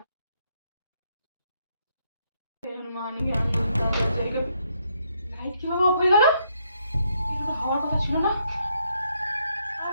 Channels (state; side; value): inverted; both; correlation -0.74